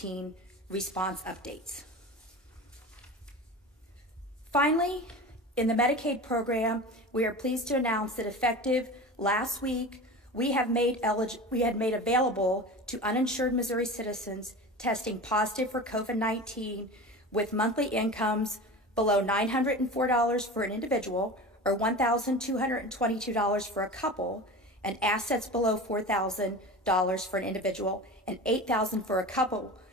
response updates. Finally, in the Medicaid program, we are pleased to announce that effective last week, we had made available to uninsured Missouri citizens testing positive for COVID-19 with monthly incomes below $904 for an individual or $1,222 for a couple, and assets below $4,000 for an individual and $8,000 for a couple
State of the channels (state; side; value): normal; both; correlation 0.32